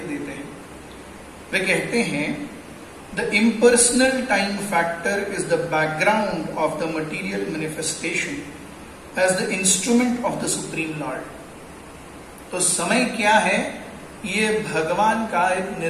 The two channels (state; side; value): identical; both; correlation 1.00